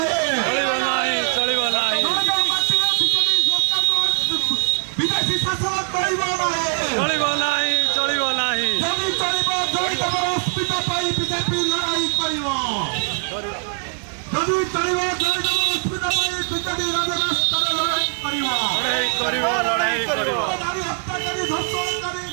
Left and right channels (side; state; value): left; silent; 55 dB below the other